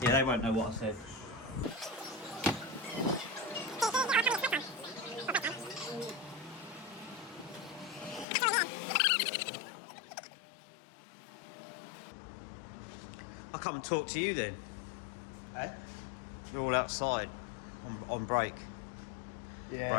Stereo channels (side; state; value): right; drops out; at 8.2 s